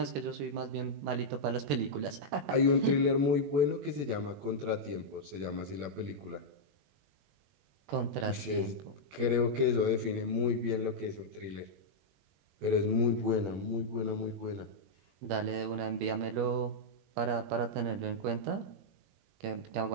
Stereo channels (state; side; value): late; left; 21 ms